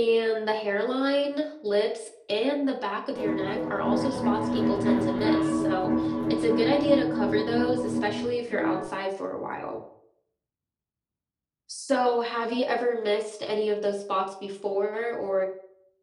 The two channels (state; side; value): identical; both; correlation 1.00